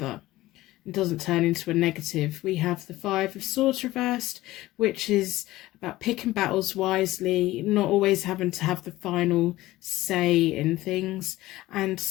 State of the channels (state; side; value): quieter; right; 17.2 dB